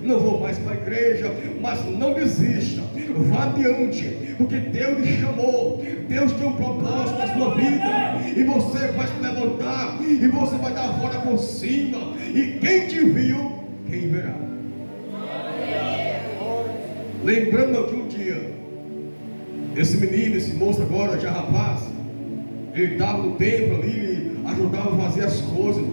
não vou mais para a igreja, mas não desista, vá adiante, porque Deus lhe chamou, Deus tem um propósito na sua vida, e você vai se levantar, e você vai dar a volta por cima, e quem te viu, quem verá. Lembrando que um dia, esse menino, esse moço agora, já rapaz, ele estava no templo ali, ele ajudava a fazer as coisas,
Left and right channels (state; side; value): inverted; both; correlation -1.00